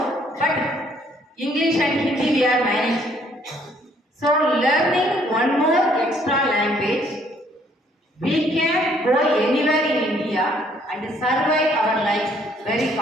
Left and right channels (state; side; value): normal; both; correlation 0.65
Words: but English and Hindi we are managing. So learning one more extra language, we can go anywhere in India and survive our life very